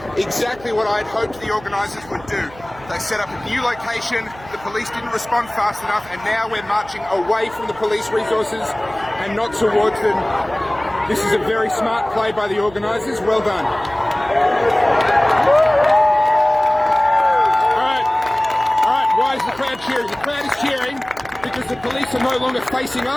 exactly what I'd hoped the organisers would do. They set up a new location, the police didn't respond fast enough, and now we're marching away from the police resources and not towards them. This is a very smart play by the organisers, well done. Alright, why is the crowd cheering? The crowd is cheering because the police are no longer facing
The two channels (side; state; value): right; noise; hum, 21 dB below the sound